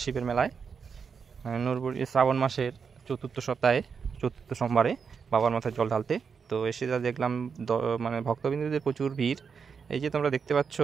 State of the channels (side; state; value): left; quieter; 6.0 dB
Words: শিবের মেলায়। নরবরিয়া শ্রাবণ মাসের চতুর্থ সপ্তাহে চতুর্থ সোমবারে বাবার মাথায় জল ঢালতে। তো এসে যা দেখলাম মানে ভক্তবৃন্দদের প্রচুর ভিড়। এই যে তোমরা দেখতে পাচ্ছ